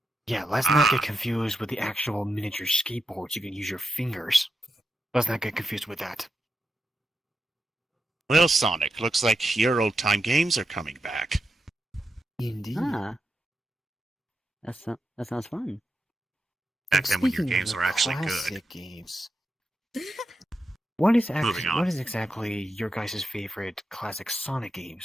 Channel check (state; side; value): normal; both; correlation 0.86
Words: yeah, let's not get confused with the actual miniature skateboards. You can use your fingers. Let's not get confused with that. Well, Sonic, looks like your old-time games are coming back. Indeed. Ah. That sounds fun. Back then when your Speaking of games the were actually good. classic games, what is Moving on. what is exactly your guys' favorite classic Sonic